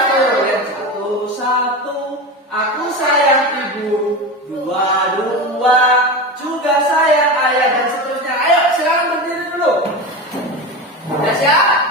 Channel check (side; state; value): both; normal; correlation 0.24